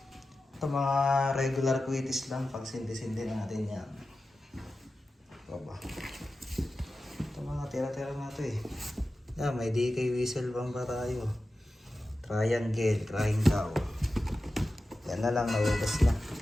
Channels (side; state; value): both; normal; correlation 0.93